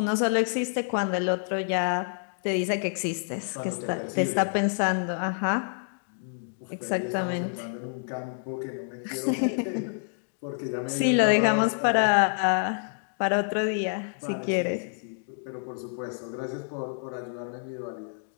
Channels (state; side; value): silent; right; digital silence